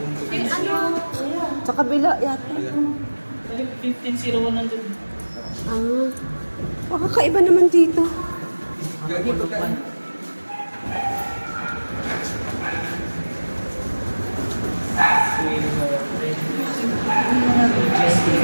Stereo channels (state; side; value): inverted; both; correlation -1.00